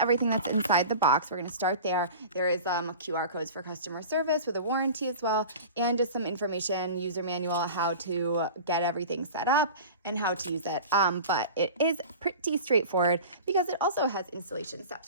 everything that's inside the box. We're going to start there. There is QR codes for customer service with a warranty as well, and just some information, user manual, how to get everything set up and how to use it. But it is pretty straightforward because it also has installation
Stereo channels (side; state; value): both; inverted; correlation -0.36